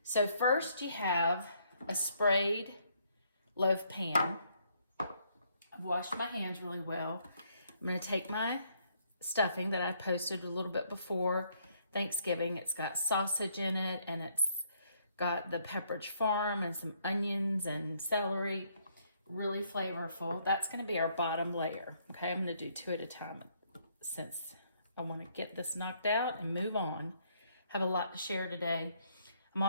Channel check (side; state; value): both; inverted; correlation -0.69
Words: So first you have a sprayed loaf pan. I've washed my hands really well. I'm going to take my stuffing that I posted a little bit before Thanksgiving. It's got sausage in it, and it's got the Pepperidge Farm and some onions and celery. Really flavorful. That's going to be our bottom layer. Okay, I'm going to do 2 at a time since I want to get this knocked out and move on. Have a lot to share today. I'm